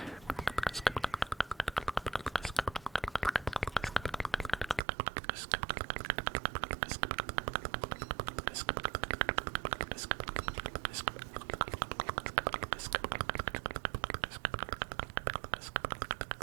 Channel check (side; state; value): left; drops out; at 4.8 s